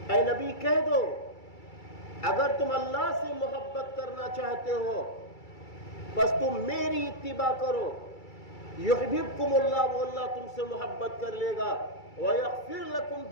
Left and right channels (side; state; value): right; late; 2.3 ms